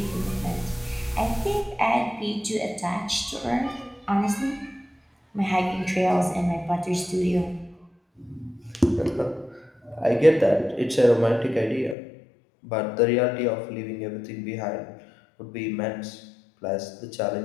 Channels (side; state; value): right; drops out; at 12.0 s